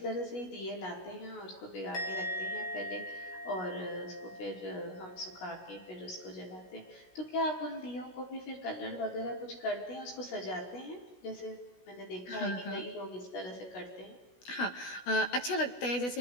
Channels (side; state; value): right; late; 16 ms